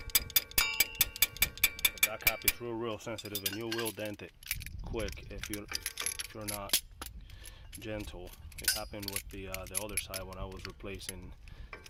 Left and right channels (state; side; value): identical; both; correlation 1.00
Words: But that cap is real sensitive, and you will dent it quick if you're not gentle. It happened with the other side when I was replacing